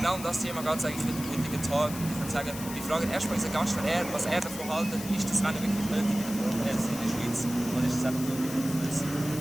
um das Thema geht es eigentlich heute am heutigen Tag. Ich würde sagen, wir fragen erstmal unseren Gast, was er davon hält. Ist das Rennen wirklich nötig in der Formel 1 in der Schweiz oder ist es einfach nur überflüssig?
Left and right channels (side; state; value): left; noise; hiss, 11 dB below the sound